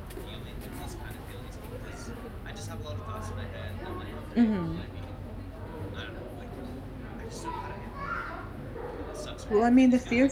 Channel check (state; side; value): identical; both; correlation 1.00